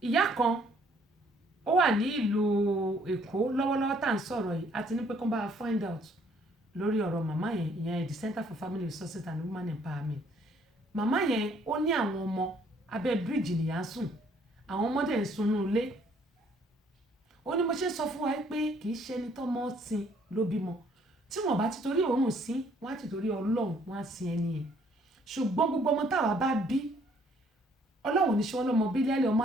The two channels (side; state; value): both; normal; correlation 0.64